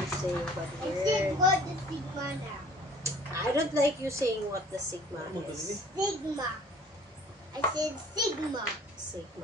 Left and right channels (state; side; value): normal; both; correlation 0.51